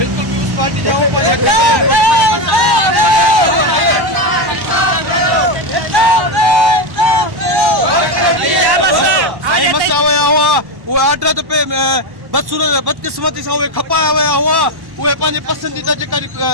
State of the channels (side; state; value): left; late; 1.1 ms